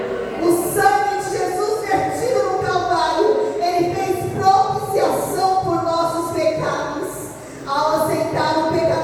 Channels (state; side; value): identical; both; correlation 1.00